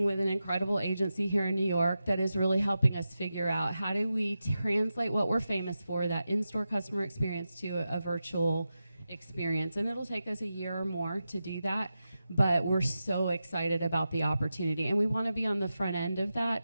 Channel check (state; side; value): inverted; both; correlation -0.91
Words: with an incredible agency here in New York that is really helping us figure out how do we translate what we're famous for, that in-store customer experience, to a virtual experience. And it'll take us a year or more to do that. But we're so excited about the opportunity, and we want to be on the front end of